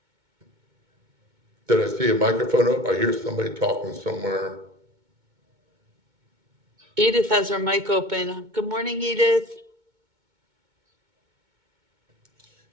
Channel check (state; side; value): late; left; 2.2 ms